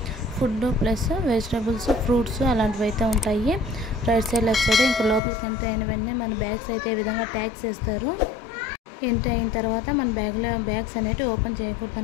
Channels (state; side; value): drops out; right; at 5.2 s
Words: ఫుడ్ ప్లస్ వెజిటబుల్స్, ఫ్రూట్స్ అలాంటివి అయితే ఉంటాయి. రైట్ సైడ్ లెఫ్ట్ సైడ్ ఇంకా లోపలికి ఎంటర్ అయిన వెంటనే మన బ్యాగ్స్ అయితే ఈ విధంగా ట్యాగ్స్ వేస్తారు. ఎంట్రీ అయిన తర్వాత మన బ్యాగ్స్ అనేవి ఓపెన్ చేయకూడదు